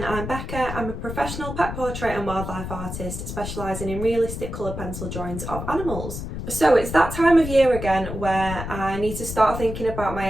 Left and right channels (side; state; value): left; noise; rumble, 7 dB below the sound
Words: I'm Becca. I'm a professional pet portrait and wildlife artist specialising in realistic coloured pencil drawings of animals. So it's that time of year again where I need to start thinking about my